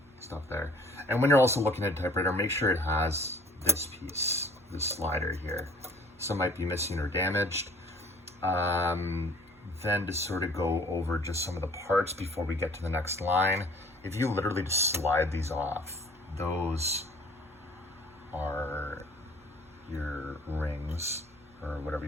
stuff there. And when you're also looking at a typewriter, make sure it has this piece, this slider here. Some might be missing or damaged. Then to sort of go over just some of the parts before we get to the next line, if you literally just slide these off, those are your rings, or whatever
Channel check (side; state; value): right; noise; hum, 28 dB below the sound